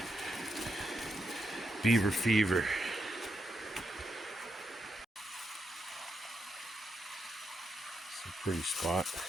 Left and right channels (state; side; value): normal; both; correlation 0.83